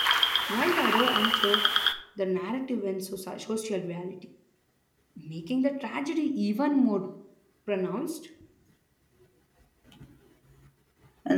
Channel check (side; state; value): both; identical; correlation 1.00